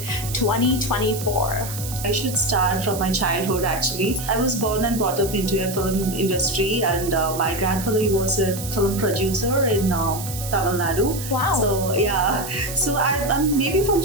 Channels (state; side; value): noise; right; hiss, 9 dB below the sound